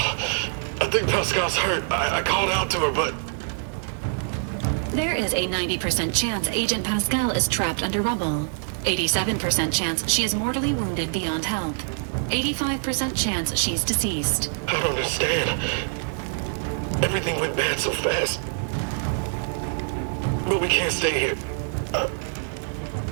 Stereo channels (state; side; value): silent; left; digital silence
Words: I think Pascal's hurt. I called out to her, but... There is a 90% chance Agent Pascal is trapped under rubble. 87% chance she is mortally wounded beyond help. 85% chance she's deceased. I don't understand. Everything went bad so fast. But we can't stay here.